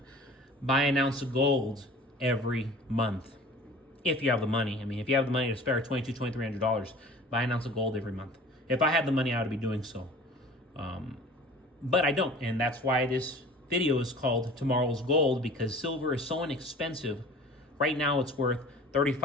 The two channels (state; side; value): normal; both; correlation 0.44